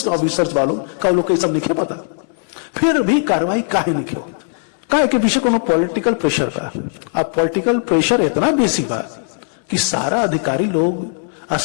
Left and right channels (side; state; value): right; silent; 65 dB below the other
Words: ऑफिसर्स वालों का लोग सब नहीं पता, फिर भी कार्रवाई काहे नहीं हो। काहे के पीछे कोनो पॉलिटिकल प्रेशर बा। अब पॉलिटिकल प्रेशर इतना बेसी बा कि सारा अधिकारी लोग और